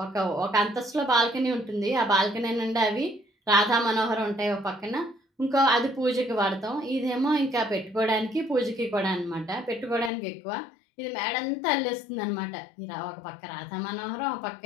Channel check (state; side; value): drops out; right; at 10.1 s